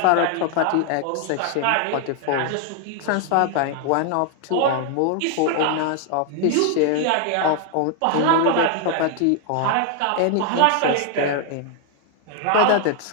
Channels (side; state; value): both; different; correlation 0.00